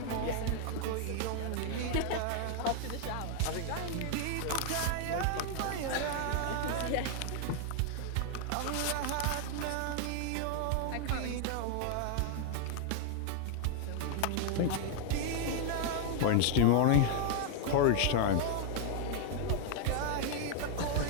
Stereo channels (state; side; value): different; both; correlation 0.00